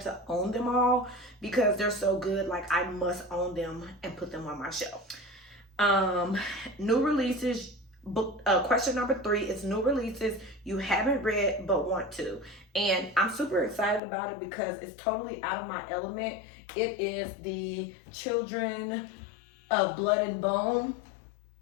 to own them all because they're so good. Like, I must own them and put them on my shelf. New releases. Book question number 3 is new releases you haven't read but want to, and I'm super excited about it because it's totally out of my element. It is the Children of Blood and Bone.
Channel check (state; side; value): drops out; right; at 14.0 s